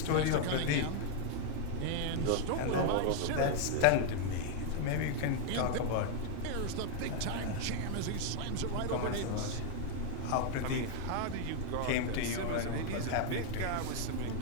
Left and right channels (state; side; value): different; both; correlation 0.00